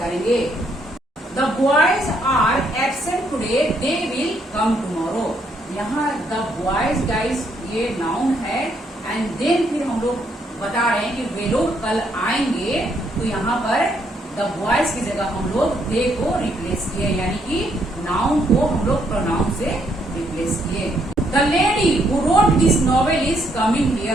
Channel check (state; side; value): normal; both; correlation 0.72